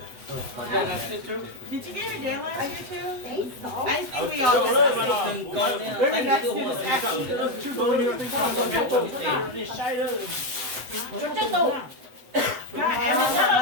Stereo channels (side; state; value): left; late; 8.0 ms